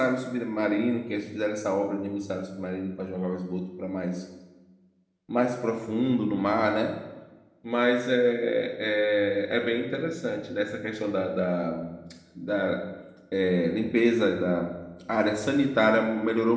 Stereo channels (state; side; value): identical; both; correlation 1.00